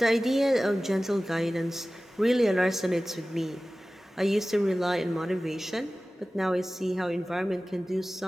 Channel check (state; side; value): normal; both; correlation 0.97